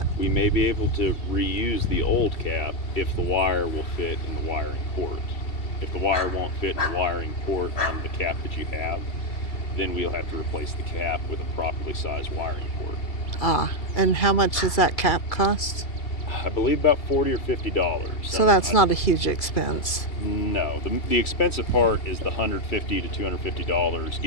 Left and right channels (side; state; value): right; late; 2.4 ms